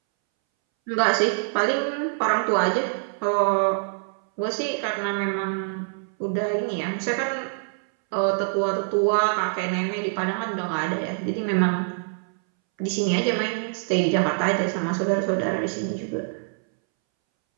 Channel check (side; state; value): left; silent; 62 dB below the other